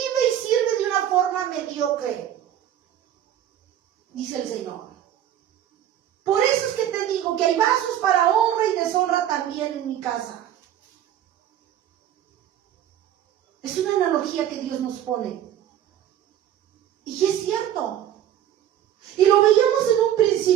y sirve de una forma mediocre, dice el Señor. Por eso es que te digo que hay vasos para honra y deshonra también en mi casa. Es una analogía que Dios nos pone. Y es cierto. Y lo veíamos en un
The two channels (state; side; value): quieter; left; 11.1 dB